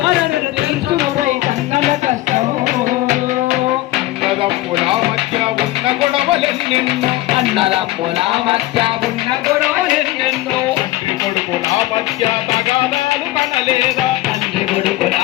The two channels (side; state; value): right; quieter; 17.3 dB